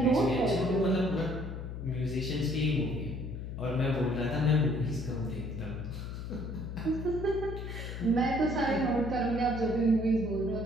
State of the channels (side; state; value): left; noise; hum, 7 dB below the sound